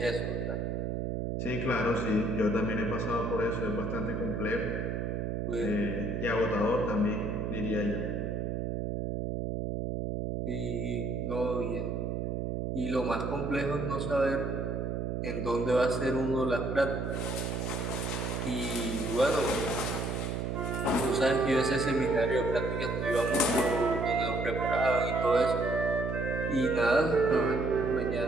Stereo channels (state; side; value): noise; right; hum, 2 dB below the sound